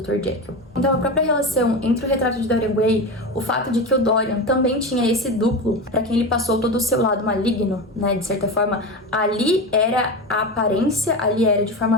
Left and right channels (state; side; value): normal; both; correlation 0.22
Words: Jekyll. Então a própria relação entre o Retrato de Dorian Gray, o fato de que o Dorian também tinha esse duplo, para quem ele passou todo o seu lado maligno, né, de certa forma, ali era a aparência, ali era de